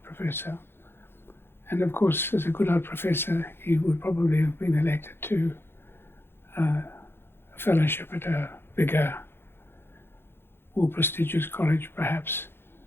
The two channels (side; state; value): right; late; 0.11 ms